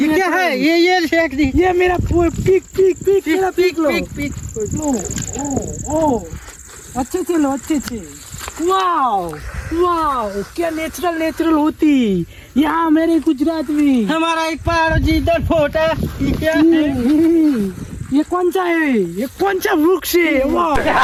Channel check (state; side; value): identical; both; correlation 1.00